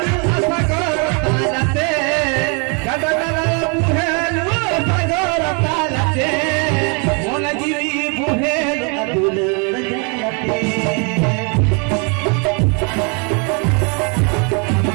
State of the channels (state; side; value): quieter; left; 34.9 dB